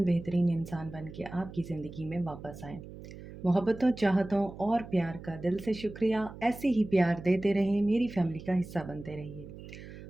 बेहतरीन इंसान बन के आपकी ज़िंदगी में वापस आएँ। मोहब्बतों, चाहतों और प्यार का दिल से शुक्रिया। ऐसे ही प्यार देते रहें, मेरी फैमिली का हिस्सा बनते रहिए।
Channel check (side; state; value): right; noise; hum, 14 dB below the sound